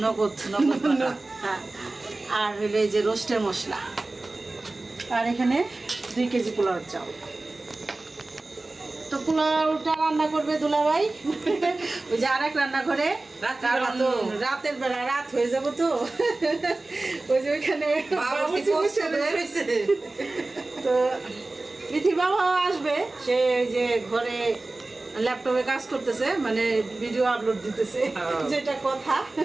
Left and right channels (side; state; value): left; quieter; 3.1 dB